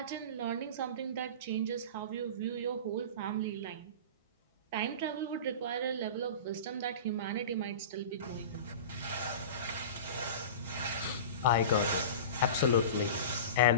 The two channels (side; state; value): both; inverted; correlation -0.32